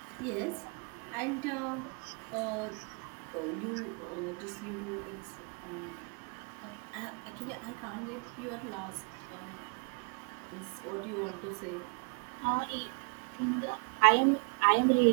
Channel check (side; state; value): left; quieter; 35.6 dB